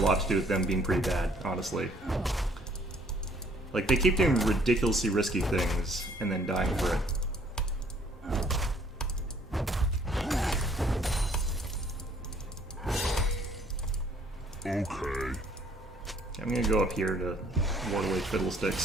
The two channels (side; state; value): both; normal; correlation 0.62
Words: to do with them being pretty bad, honestly. Like, they keep doing ridiculously risky things and then dying for it. Okay. I'm gonna go up here to ward away